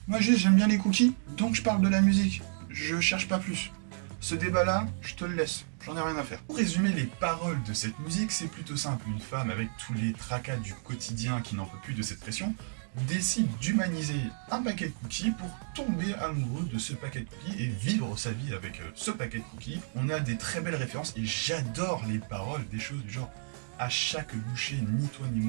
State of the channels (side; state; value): left; silent; digital silence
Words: Moi juste j'aime bien les cookies, donc je parle de la musique. Je cherche pas plus. Ce débat-là, je te le laisse, j'en ai rien à faire. Pour résumer les paroles de cette musique, c'est plutôt simple. Une femme avec tous les tracas du quotidien qui n'en peut plus de cette pression décide d'humaniser un paquet de cookies pour tomber amoureux de ce paquet de cookies et vivre sa vie avec ce paquet de cookies. On a des très belles références et j'adore les paroles, des choses du genre à chaque bouchée, ni toi ni